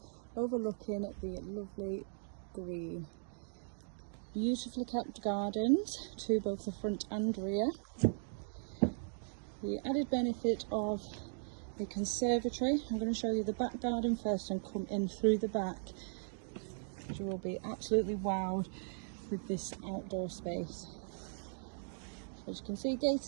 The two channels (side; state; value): left; silent; digital silence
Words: overlooking the lovely green. Beautifully kept gardens to both the front and rear. The added benefit of a conservatory. I'm going to show you the back garden first and come in through the back. You will be absolutely wowed with this outdoor space. As you can see,